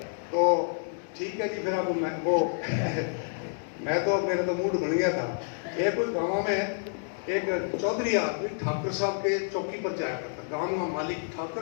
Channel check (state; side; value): silent; right; digital silence